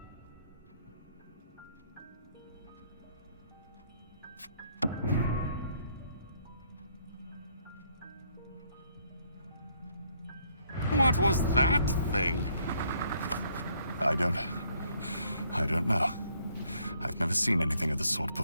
What was that thing? I don't know. I've never seen anything of the sort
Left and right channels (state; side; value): inverted; both; correlation -0.68